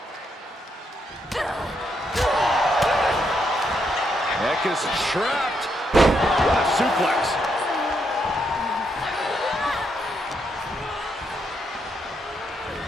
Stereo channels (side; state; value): both; normal; correlation 0.78